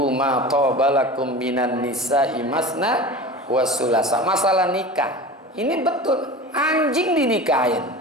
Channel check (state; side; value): normal; both; correlation 0.33